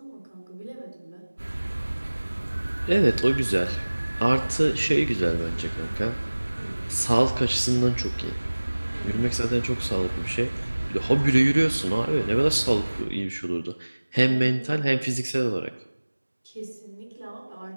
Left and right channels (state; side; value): inverted; both; correlation -1.00